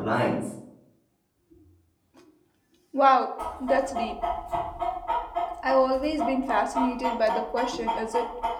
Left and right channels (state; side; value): identical; both; correlation 1.00